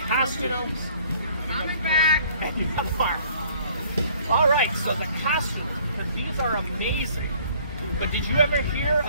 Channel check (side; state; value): both; inverted; correlation -0.57